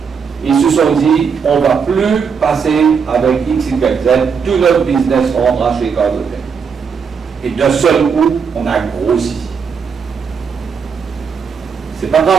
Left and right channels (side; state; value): left; quieter; 6.3 dB